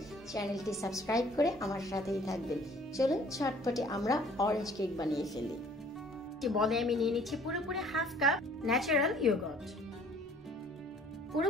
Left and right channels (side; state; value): both; normal; correlation 0.55